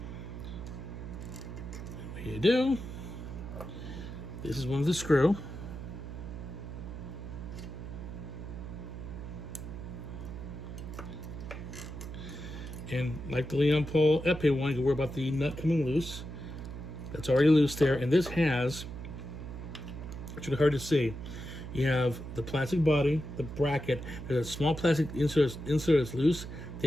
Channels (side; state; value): right; noise; hum, 9 dB below the sound